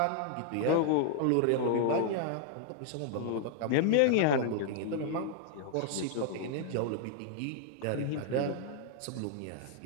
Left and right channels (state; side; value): different; both; correlation -0.01